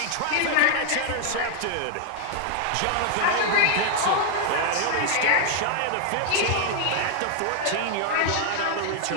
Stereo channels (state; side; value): different; both; correlation 0.00